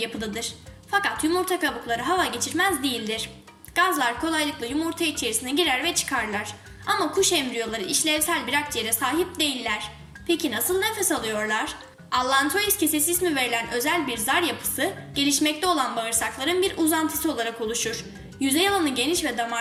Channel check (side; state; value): both; identical; correlation 1.00